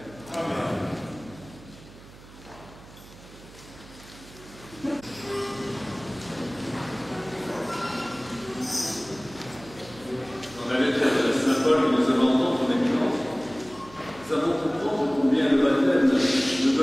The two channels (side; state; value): right; noise; hum, 20 dB below the sound